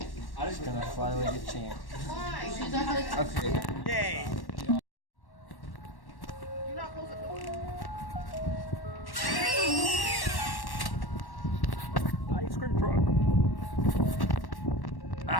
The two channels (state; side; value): late; right; 1.1 ms